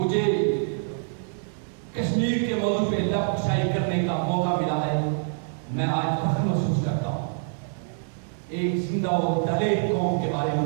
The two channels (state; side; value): silent; left; 61 dB below the other